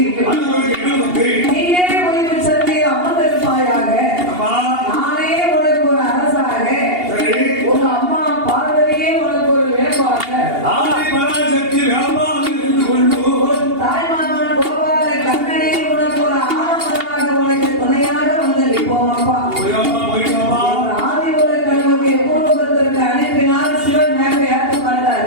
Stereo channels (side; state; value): left; late; 2.8 ms